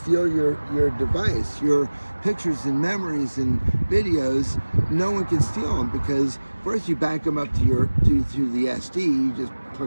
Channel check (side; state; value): both; inverted; correlation -1.00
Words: your device, your pictures and memories and videos. No one can steal them because first you back them up to the SD. You just